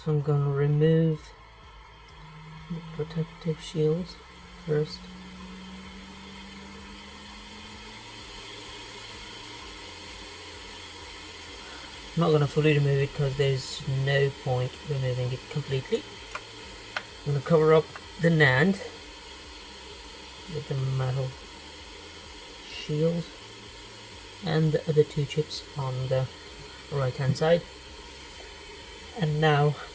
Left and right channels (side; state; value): both; identical; correlation 1.00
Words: So I'm going to remove the protective shields first. I'm not going to fully remove it because there's no point removing it completely. I'm going to cover up the NAND with the metal shield and the other two chips on the right hand side. And now